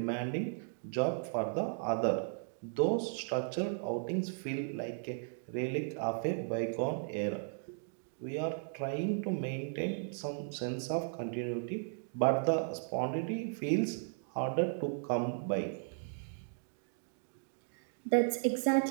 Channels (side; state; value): left; silent; digital silence